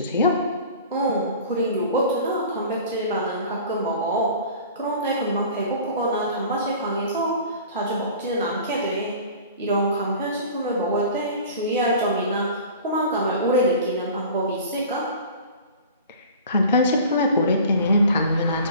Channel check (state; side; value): inverted; both; correlation -0.42